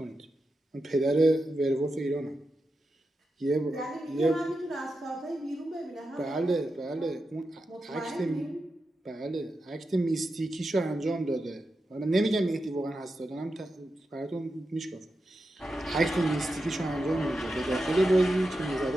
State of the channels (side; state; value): both; normal; correlation 0.89